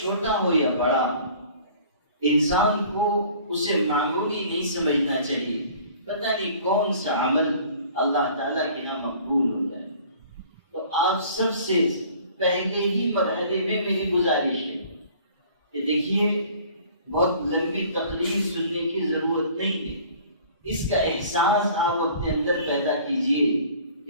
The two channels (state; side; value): inverted; both; correlation -0.51